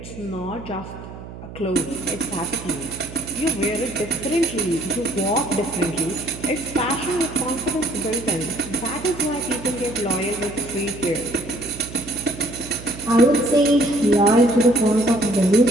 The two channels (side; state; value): right; noise; hum, 13 dB below the sound